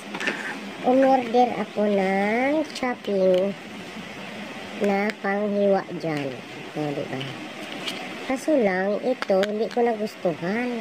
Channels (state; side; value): identical; both; correlation 1.00